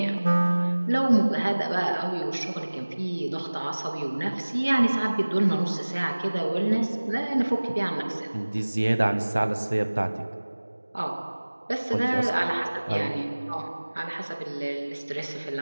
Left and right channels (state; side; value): inverted; both; correlation -1.00